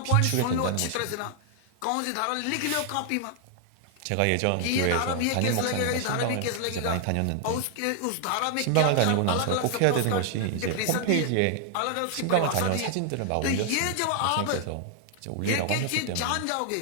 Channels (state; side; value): different; both; correlation 0.00